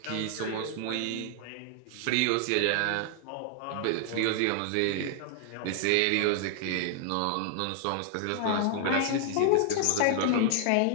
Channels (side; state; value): both; different; correlation 0.00